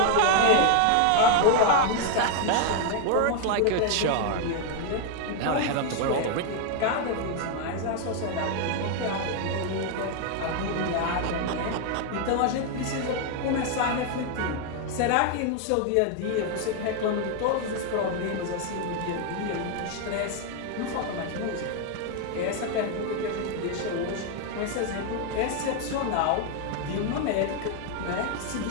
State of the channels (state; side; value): different; both; correlation 0.00